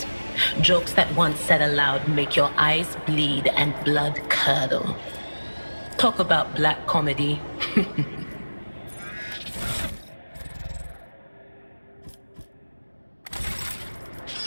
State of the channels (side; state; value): both; inverted; correlation -1.00